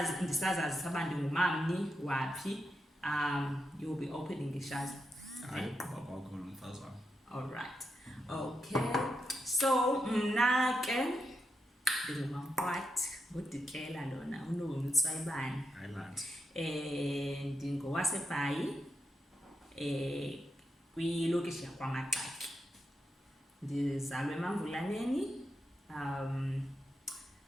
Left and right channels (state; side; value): normal; both; correlation 0.85